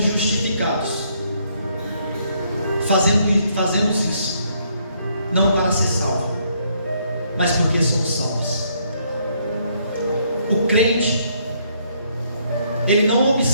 justificados, fazemos isso não para ser salvo, mas porque somos salvos. O crente, ele não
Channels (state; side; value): inverted; both; correlation -0.70